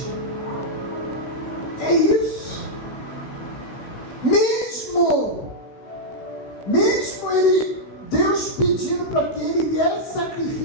É isso. Mesmo ele, Deus pedindo para que ele viesse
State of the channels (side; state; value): right; late; 16 ms